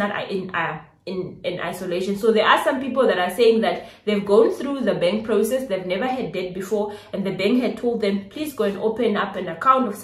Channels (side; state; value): both; identical; correlation 1.00